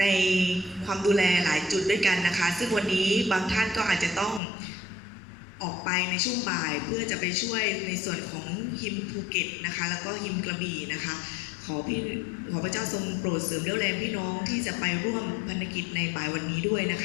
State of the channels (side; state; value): right; drops out; at 4.4 s